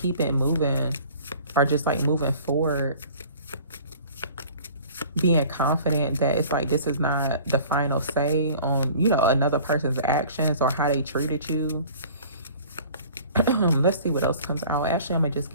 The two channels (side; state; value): both; inverted; correlation -0.47